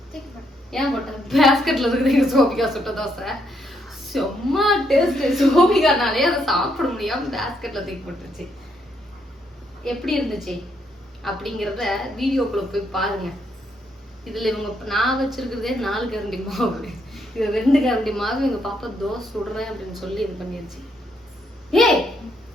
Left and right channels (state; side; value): normal; both; correlation 0.75